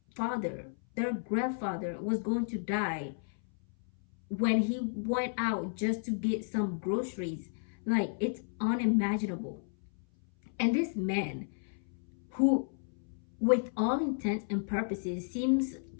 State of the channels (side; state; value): right; silent; 56 dB below the other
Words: father, their grandfather was going to die when he went out just to get some groceries. Like, it's unimaginable. And this man, who with all intents and purposes seems